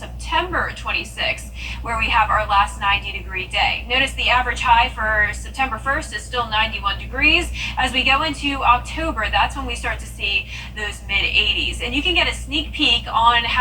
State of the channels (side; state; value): both; identical; correlation 1.00